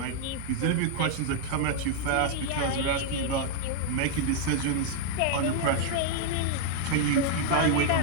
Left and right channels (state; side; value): different; both; correlation -0.01